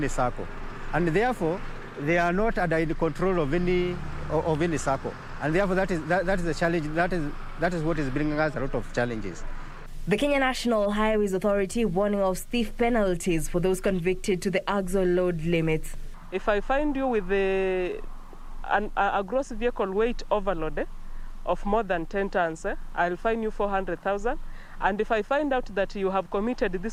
circle. And therefore, they are not under the control of any circle. And therefore, that is the challenge, that is what is bringing us a lot of challenges. The Kenya National Highways Authority warning of stiff penalties for those convicted to the axle load limits. If I find you with a gross vehicle weight overload of more than 10 tons, I'll fine you 400,000. And if I find out that you have committed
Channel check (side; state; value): both; identical; correlation 1.00